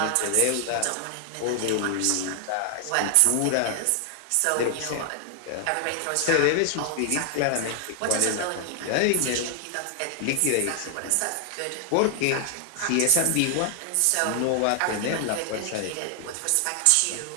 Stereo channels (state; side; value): different; both; correlation 0.00